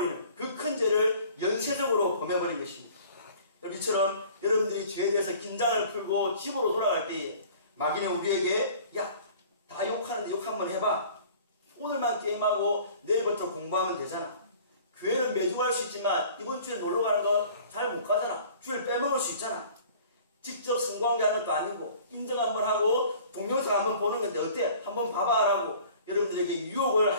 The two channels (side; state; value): both; inverted; correlation -0.48